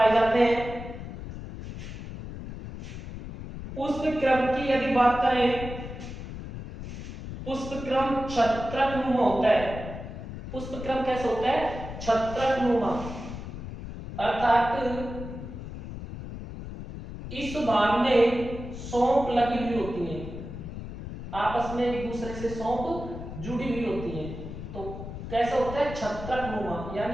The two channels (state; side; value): noise; left; rumble, 9 dB below the sound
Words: जाते हैं। पुष्प क्रम की यदि बात करें, पुष्प क्रम छत्रकनुमा होता है। पुष्प क्रम कैसा होता है? छत्रकनुमा अर्थात इस भाग में सौंफ लगी हुई होती है, आपस में एक दूसरे से सौंफ जुड़ी हुई होती है। तो कैसा होता है, छत्रकनुमा,